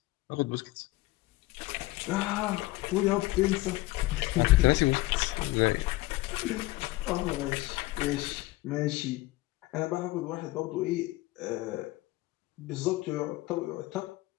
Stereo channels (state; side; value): quieter; right; 19.2 dB